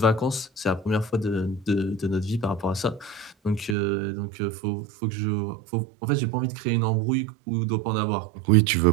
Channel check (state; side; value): drops out; left; at 3.8 s